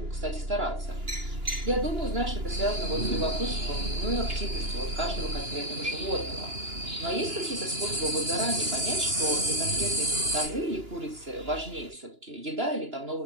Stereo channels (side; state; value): left; late; 2.9 ms